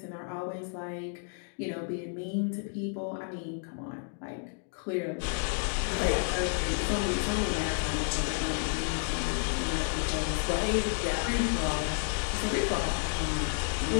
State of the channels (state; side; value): silent; right; 57 dB below the other